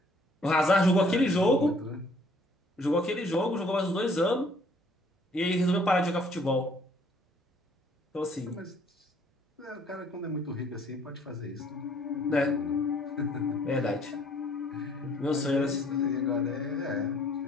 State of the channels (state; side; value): normal; both; correlation 0.60